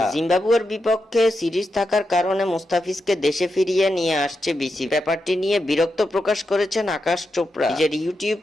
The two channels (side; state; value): both; normal; correlation 0.87